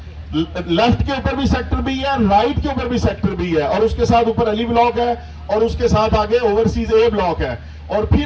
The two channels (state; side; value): identical; both; correlation 1.00